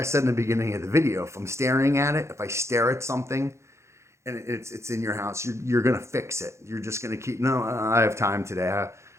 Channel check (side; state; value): left; late; 0.14 ms